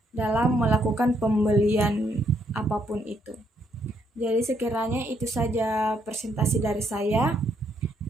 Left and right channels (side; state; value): both; normal; correlation 0.73